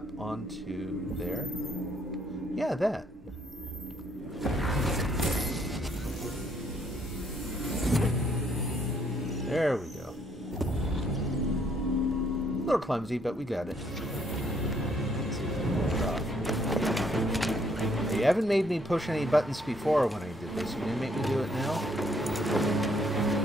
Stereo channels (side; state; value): both; normal; correlation 0.68